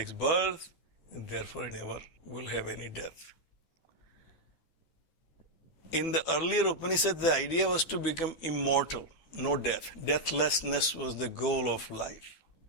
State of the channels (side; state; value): right; late; 12 ms